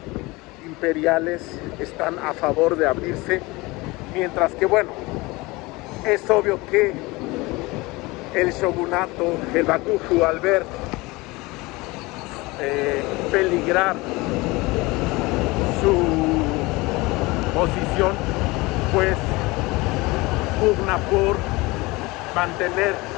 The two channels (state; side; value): quieter; right; 22.8 dB